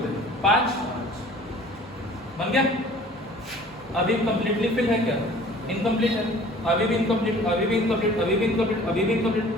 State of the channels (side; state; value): both; normal; correlation 0.49